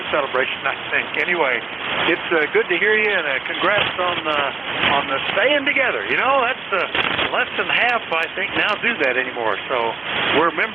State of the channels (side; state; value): left; quieter; 4.0 dB